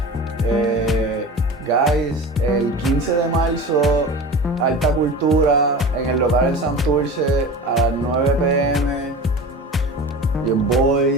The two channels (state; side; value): normal; both; correlation 0.34